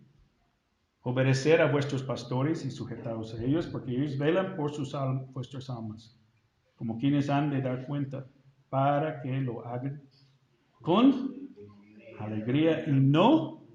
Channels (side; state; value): both; identical; correlation 1.00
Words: Obedecer a vuestros pastores y sujetaos a ellos, porque ellos velan por vuestras almas, como quienes han de dar cuenta, para que lo hagan con alegría y no